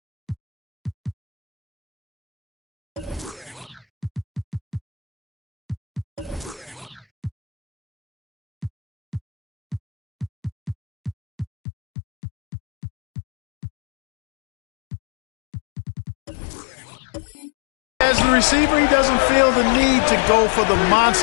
as the receiver, he doesn't feel the need to go for the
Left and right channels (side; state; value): right; drops out; at 11.5 s